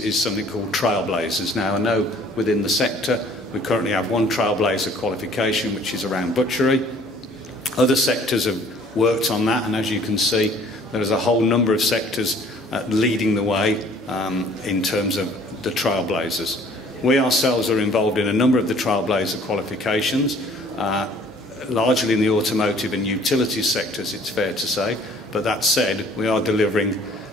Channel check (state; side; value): normal; both; correlation 0.55